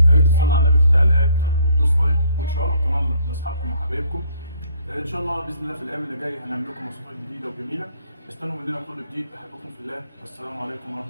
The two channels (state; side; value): inverted; both; correlation -0.62